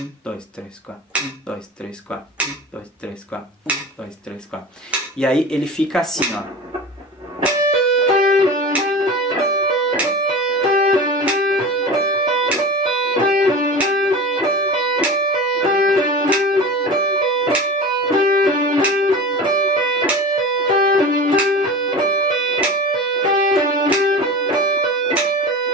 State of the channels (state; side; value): normal; both; correlation 0.32